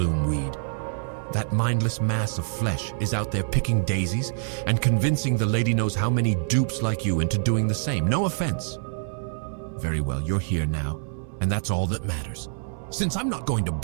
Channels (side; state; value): left; silent; 61 dB below the other